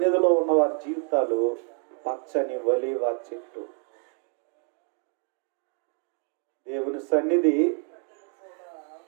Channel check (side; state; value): left; quieter; 38.0 dB